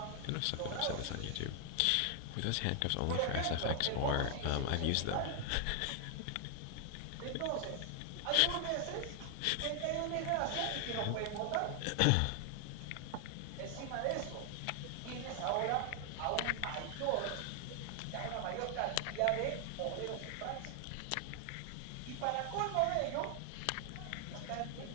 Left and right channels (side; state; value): both; different; correlation 0.00